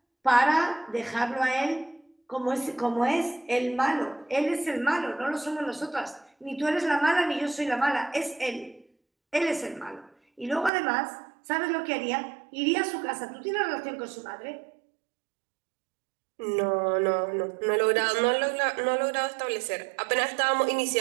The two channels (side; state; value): left; drops out; at 10.7 s